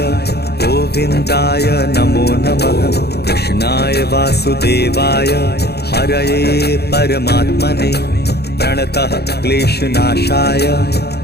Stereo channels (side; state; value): right; late; 0.47 ms